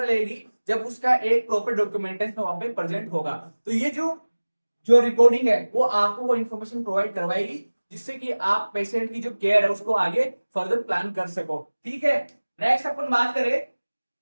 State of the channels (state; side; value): inverted; both; correlation -1.00